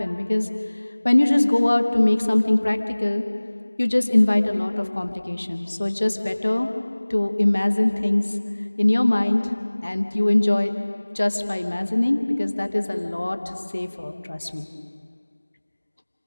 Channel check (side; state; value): both; inverted; correlation -1.00